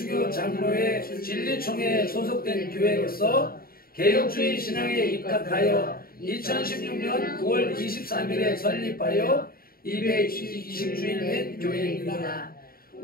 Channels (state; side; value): late; right; 0.43 ms